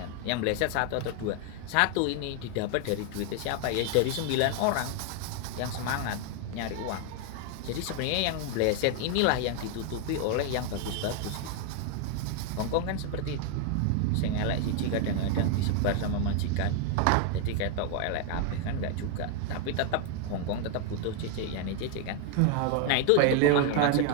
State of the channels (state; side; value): different; both; correlation 0.01